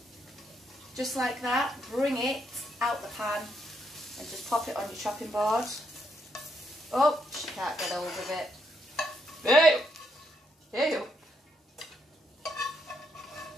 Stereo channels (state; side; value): normal; both; correlation 0.76